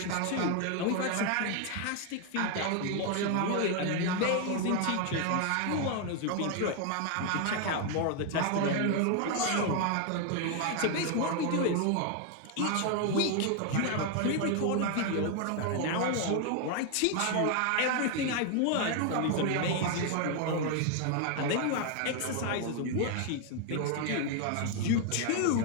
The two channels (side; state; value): both; different; correlation 0.00